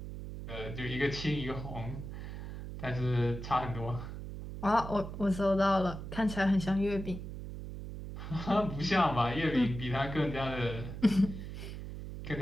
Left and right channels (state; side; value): noise; right; hum, 8 dB below the sound